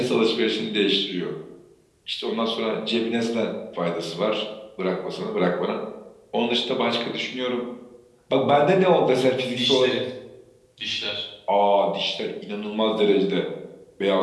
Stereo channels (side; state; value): both; identical; correlation 1.00